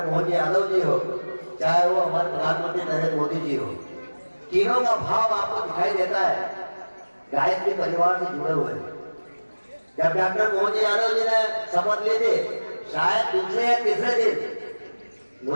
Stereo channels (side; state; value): both; inverted; correlation -1.00